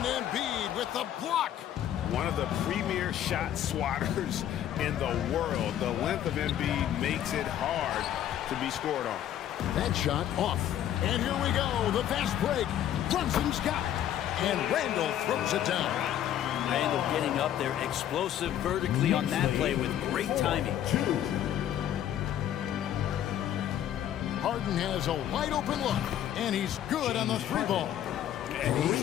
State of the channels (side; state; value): right; quieter; 11.1 dB